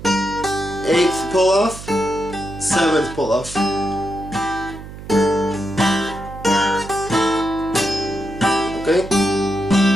8th pull off, 7th pull off. Okay?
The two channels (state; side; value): noise; right; hum, 13 dB below the sound